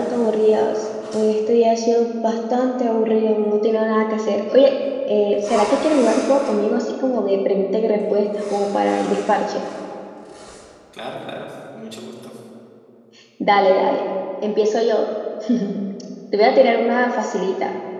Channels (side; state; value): both; identical; correlation 1.00